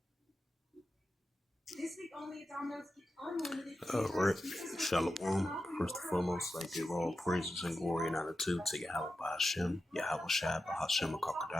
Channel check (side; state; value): both; normal; correlation 0.90